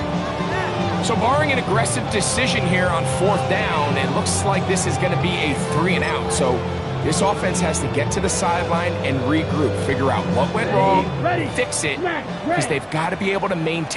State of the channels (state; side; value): identical; both; correlation 1.00